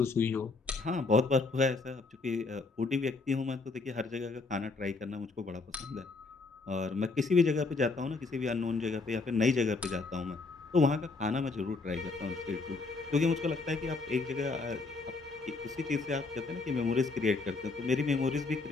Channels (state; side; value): quieter; right; 3.9 dB